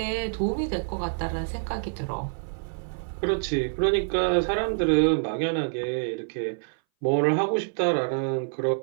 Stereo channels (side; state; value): left; silent; 59 dB below the other